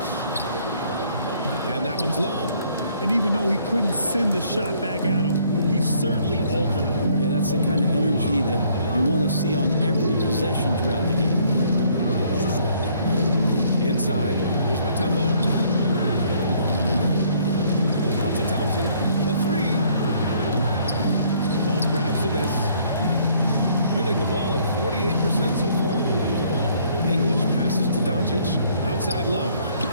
And that one's long. And even though he couldn't send the shot back at him, he certainly altered it. Yeah, that's the kind of energy that you want to see on every possession throughout the game. Inside. Here's Mutombo. Out to Thompson. The three. Love grabs the miss. Shooting the ball at 48% so far. English passes to Doncic. Outside Love.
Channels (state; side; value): inverted; both; correlation -0.63